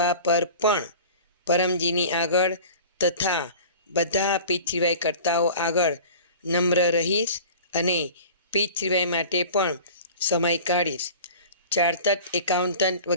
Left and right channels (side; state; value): both; inverted; correlation -0.40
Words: પર પણ પરમજીની આગળ તથા બધા પીતૃવાય કરતાઓ આગળ નમ્ર રહીશ અને પીતૃવાય માટે પણ સમય કાઢીશ. ચાર્ટર્ડ એકાઉન્ટન્ટ